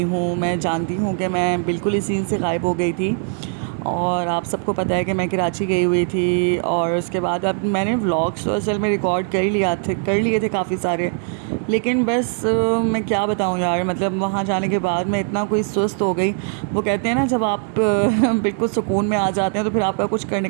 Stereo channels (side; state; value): left; silent; 56 dB below the other